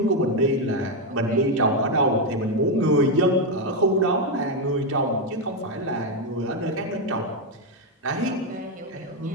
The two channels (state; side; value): normal; both; correlation 0.04